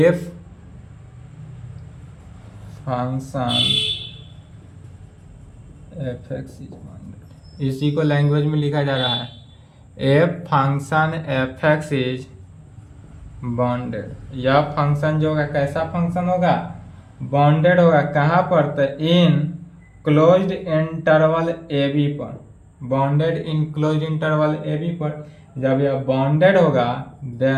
function F X is bounded, इसी को लैंग्वेज में लिखा जा रहा है F function F X is bounded. यह फंक्शन जो होगा कैसा फंक्शन होगा, बाउंडेड होगा। कहाँ पर, तो in closed interval A B पर, bounded in closed interval A B पर। जब यह बाउंडेड होगा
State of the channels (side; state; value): both; identical; correlation 1.00